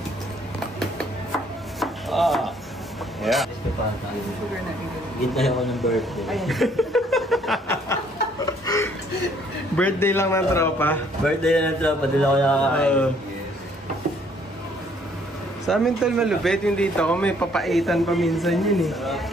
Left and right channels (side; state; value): both; normal; correlation 0.63